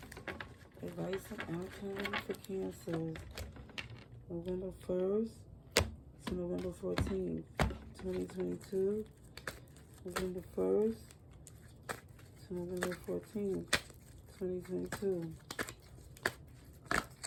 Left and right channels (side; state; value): both; identical; correlation 1.00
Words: Advice and outcome for Cancers. November 1st to November 14th, 2022. November 1st to November 14th, 2022.